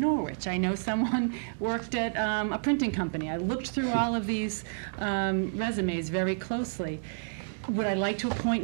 I know someone worked at a printing company. I looked through all of these resumes very closely. Would I like to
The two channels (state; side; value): silent; left; digital silence